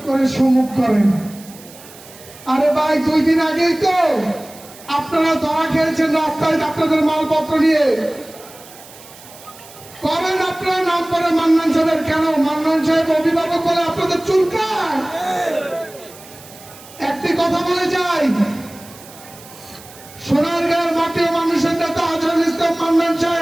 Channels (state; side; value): noise; right; hiss, 20 dB below the sound